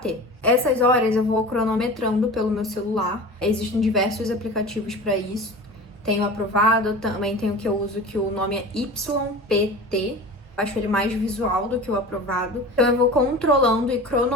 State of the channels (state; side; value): normal; both; correlation 0.35